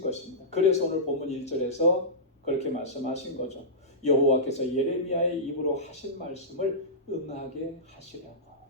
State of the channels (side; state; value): both; normal; correlation -0.16